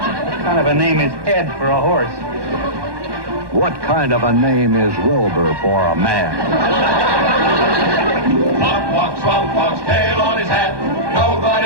Name is Ed for a horse. What kind of a name is Wilbur for a man? Swamp Fox, Swamp Fox, tail on his hat.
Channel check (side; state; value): left; late; 1.2 ms